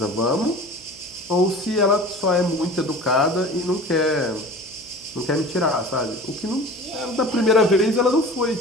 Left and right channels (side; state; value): right; noise; hum, 24 dB below the sound